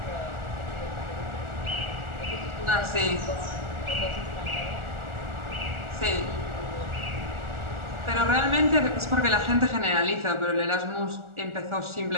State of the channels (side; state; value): left; late; 1.4 ms